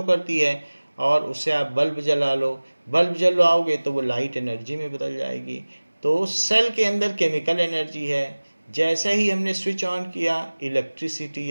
करती है। और उससे आप बल्ब जला लो, बल्ब जलाओगे तो वो लाइट एनर्जी में बदल जाएगी। तो सेल के अंदर केमिकल एनर्जी है, जैसे ही हमने स्विच ऑन किया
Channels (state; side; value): inverted; both; correlation -1.00